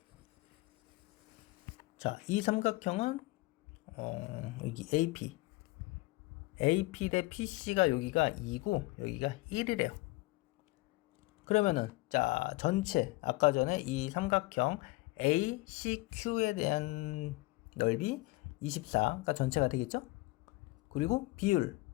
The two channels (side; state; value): right; quieter; 21.9 dB